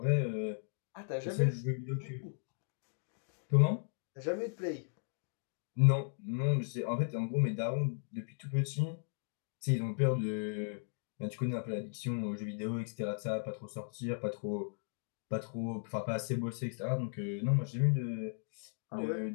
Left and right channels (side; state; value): right; silent; digital silence